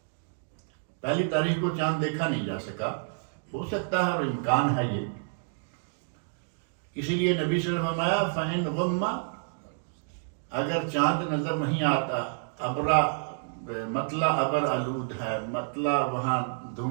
پہلی تاریخ کو چاند دیکھا نہیں جا سکا، ہو سکتا ہے اور امکان ہے یہ، اسی لیے نبی صلی اللہ علیہ وسلم فرمایا فَإِنْ غُمَّ، اگر چاند نظر نہیں آتا، ابرا مطلع ابر آلود ہے، مطلع وہاں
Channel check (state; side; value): silent; left; digital silence